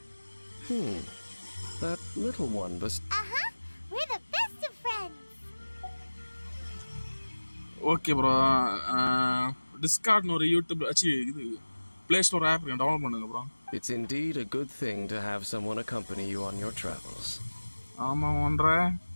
That little one Uh-huh. We're the best of friends. Okay bro. டிஸ்கார்ட்னு ஒரு யூடியூப் இது ப்ளே ஸ்டோர் ஆப் டவுன்லோட் பண்ணுங்க bro. It's indeed a good thing to have someone accompany you on your travels. ஆமாம் ஒன்ற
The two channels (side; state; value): both; inverted; correlation -1.00